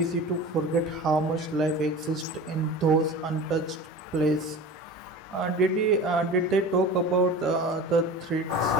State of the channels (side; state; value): both; normal; correlation 0.35